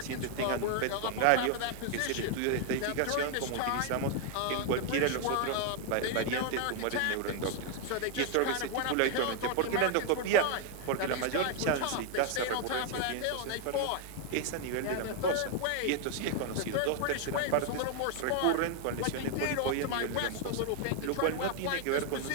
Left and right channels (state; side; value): different; both; correlation 0.00